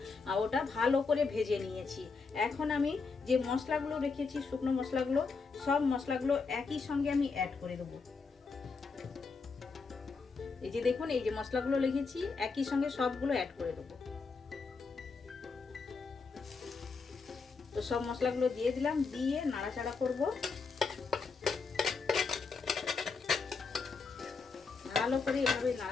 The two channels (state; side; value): quieter; right; 4.7 dB